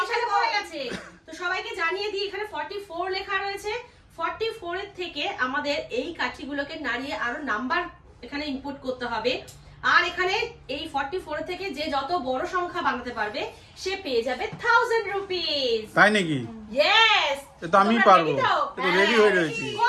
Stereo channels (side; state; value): both; identical; correlation 1.00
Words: পড়ে গেছে। তো সবাইকে জানিয়ে দিই এখানে 44 লেখা রয়েছে। 44 এর থেকে আমাদের এই কাঠিগুলোকে নাড়িয়ে আরো নাম্বার এখানে ইনপুট করতে হবে। আর এখানে এই 44 থেকে যে যত বড় সংখ্যা বানাতে পারবে সে পেয়ে যাবে 1000 রুপিস। তাই নাকি? ইয়েস। তো আমি পারবো, তো রেডি হয়ে রয়েছি।